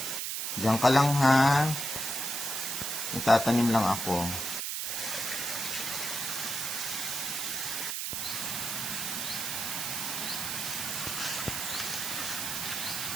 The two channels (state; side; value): noise; right; hiss, 2 dB below the sound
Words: Diyan ka lang ha. Magtatanim lang ako.